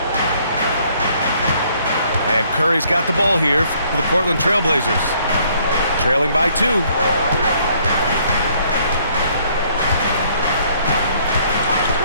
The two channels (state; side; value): inverted; both; correlation -0.64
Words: And Curry's got the ball here for the Portland Trailblazers. Trailing by 2.